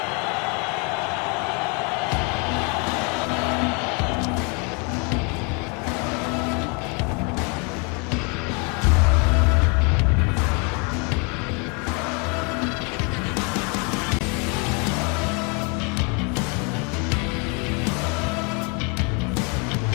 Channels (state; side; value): quieter; right; 33.4 dB